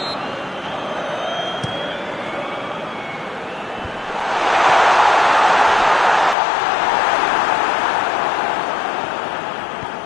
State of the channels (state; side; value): drops out; right; at 6.4 s